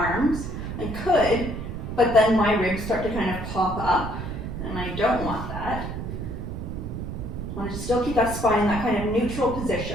I could, but then my ribs start to kind of pop up, and I don't want that. I want to still keep that spine in that kind of neutral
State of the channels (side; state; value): right; noise; rumble, 6 dB below the sound